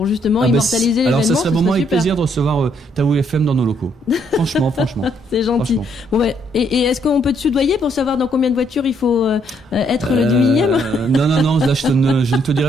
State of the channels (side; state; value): both; normal; correlation 0.70